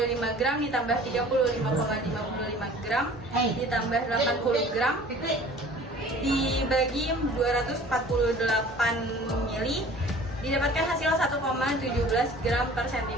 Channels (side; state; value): both; normal; correlation 0.47